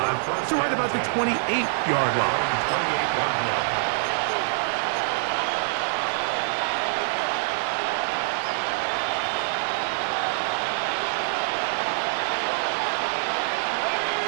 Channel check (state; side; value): silent; left; digital silence